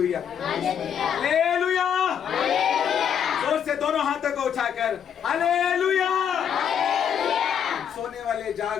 हालेलुया। जोर से दोनों हाथों को उठाकर हालेलुया। सोने वाले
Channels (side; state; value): right; quieter; 8.4 dB